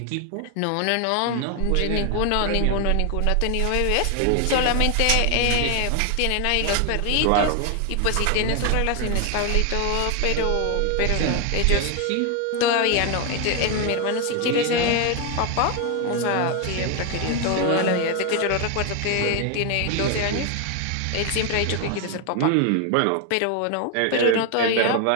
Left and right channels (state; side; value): different; both; correlation 0.01